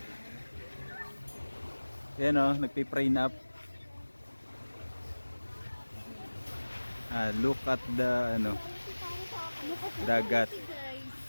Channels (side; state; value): both; inverted; correlation -1.00